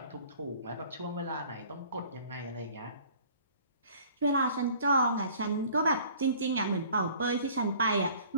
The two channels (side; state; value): both; inverted; correlation -0.51